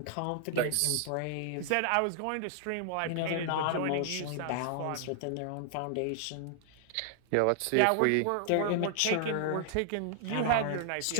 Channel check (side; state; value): both; different; correlation -0.01